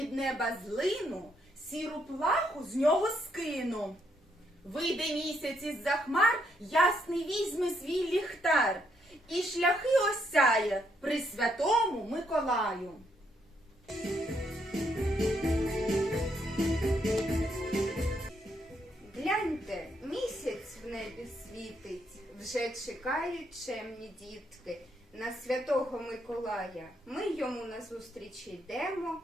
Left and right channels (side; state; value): both; normal; correlation 0.75